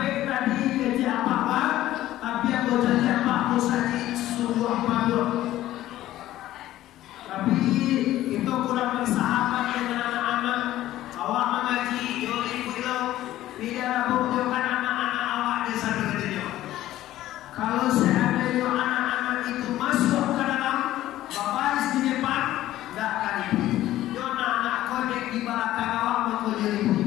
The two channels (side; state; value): right; quieter; 14.4 dB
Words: tadi gaji apa-apa, tapi aku jadi apa-apa saja sungguh apa-apa. Tapi itu kurang bersahabat dengan anak-anak. Awak mengaji, yo ibu Tidak menunjukkan anak-anak awak di sana katanya. Kalau seandainya anak-anak itu masuk ke dalam babaris di depan, tidak akan ibu. Yo anak kodek di belakang awak mau jadi ibu.